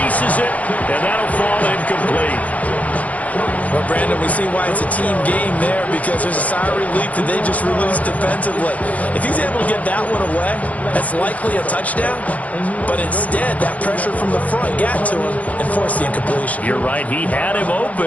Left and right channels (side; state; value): right; late; 0.071 ms